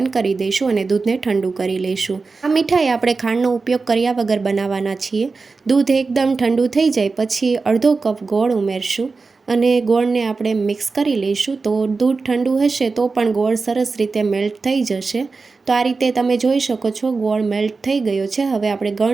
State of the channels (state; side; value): quieter; left; 4.2 dB